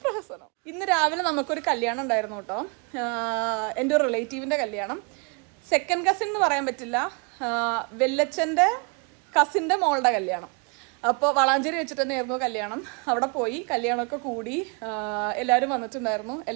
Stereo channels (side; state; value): left; quieter; 35.2 dB